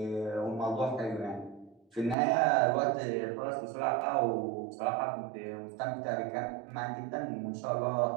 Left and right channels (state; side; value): drops out; left; at 2.1 s